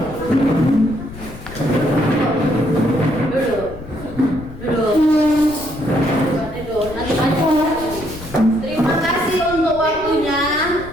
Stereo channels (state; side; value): noise; left; rumble, 14 dB below the sound